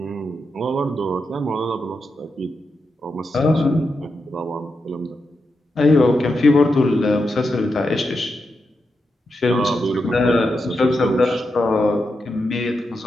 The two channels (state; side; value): normal; both; correlation 0.86